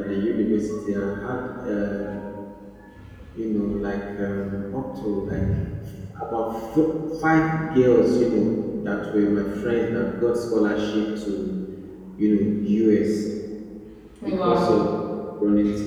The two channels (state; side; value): identical; both; correlation 1.00